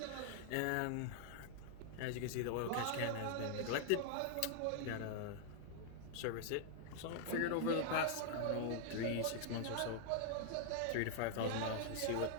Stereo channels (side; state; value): both; different; correlation -0.01